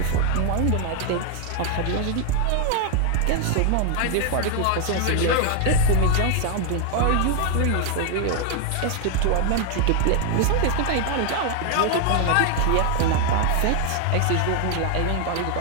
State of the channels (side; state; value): both; different; correlation 0.00